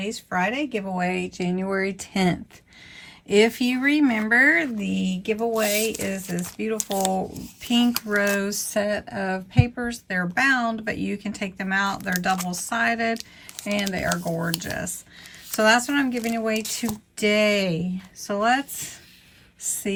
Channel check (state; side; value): identical; both; correlation 1.00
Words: Friday giveaway, January 10th. If you remember, the giveaway is this beautiful pink rose set of papers. They're bound, but you can take them out. They're double-sided and they are gorgeous. So that's what I'm giving away today. So let's